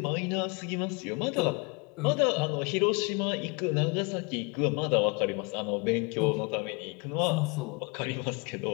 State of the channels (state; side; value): quieter; right; 30.1 dB